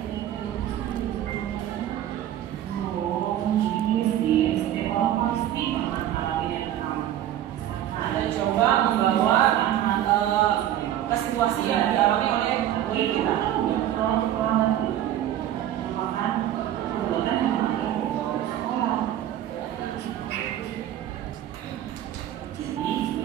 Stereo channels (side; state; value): left; quieter; 11.9 dB